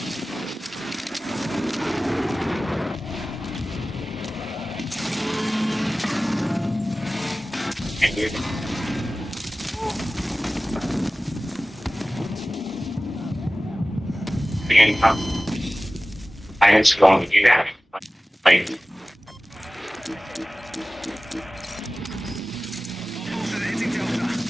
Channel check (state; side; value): normal; both; correlation 0.97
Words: I was going to do that. Like,